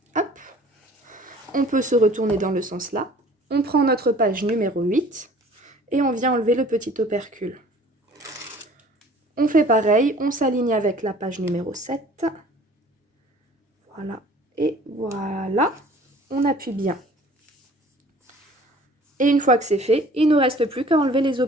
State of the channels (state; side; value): normal; both; correlation 0.50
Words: Hop, on peut se retourner dans le sens là. On prend notre page numéro 8 et on vient enlever le petit opercule. On fait pareil, on s'aligne avec la page numéro 7. Voilà, et voilà, on appuie bien. Et une fois que c'est fait, il ne nous reste plus qu'à enlever les